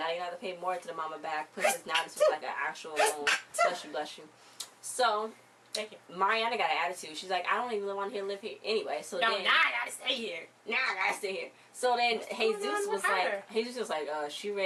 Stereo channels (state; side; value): identical; both; correlation 1.00